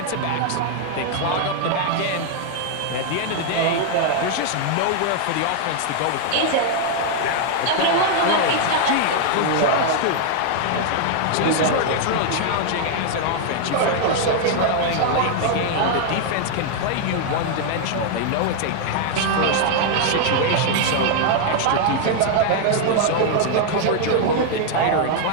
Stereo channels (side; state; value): both; different; correlation 0.00